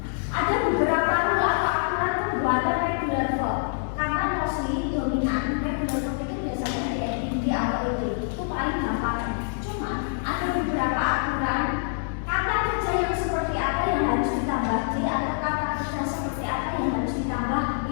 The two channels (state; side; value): silent; right; 61 dB below the other